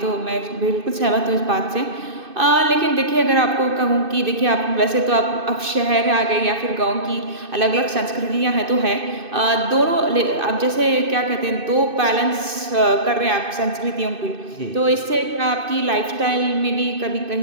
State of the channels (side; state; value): left; late; 2.6 ms